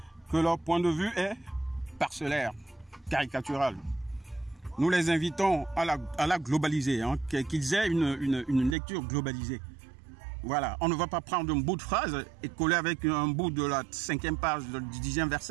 que leur point de vue est parcellaire, caricatural. Nous les invitons à la globaliser, hein, qu'ils aient une lecture globalisée. Voilà, on ne va pas prendre un bout de phrase et coller avec un bout de la 5e page du 10e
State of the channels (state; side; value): drops out; left; at 8.8 s